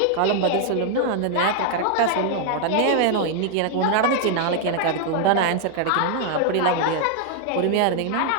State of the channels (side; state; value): both; different; correlation 0.00